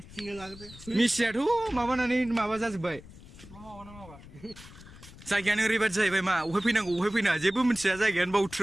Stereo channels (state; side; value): noise; left; rumble, 18 dB below the sound